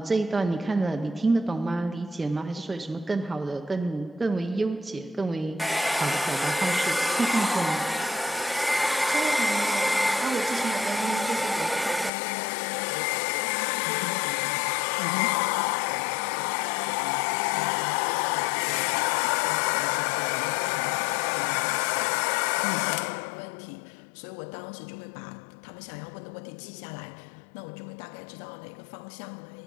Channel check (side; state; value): right; drops out; at 12.1 s